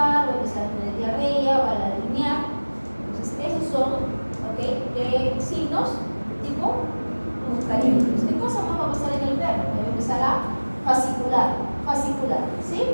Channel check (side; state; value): both; inverted; correlation -1.00